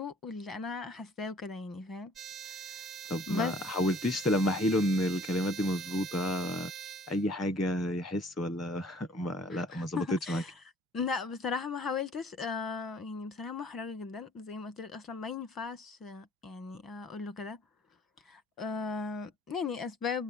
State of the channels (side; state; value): both; normal; correlation 0.56